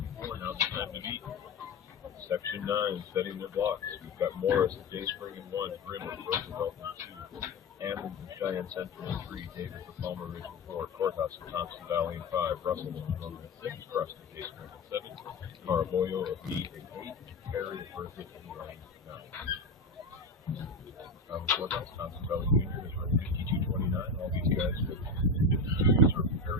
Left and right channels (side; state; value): right; quieter; 3.1 dB